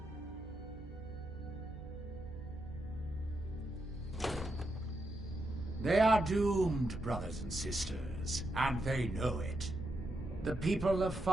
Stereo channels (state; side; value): noise; right; hum, 15 dB below the sound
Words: They are doomed, brothers and sisters, and they know it. The people of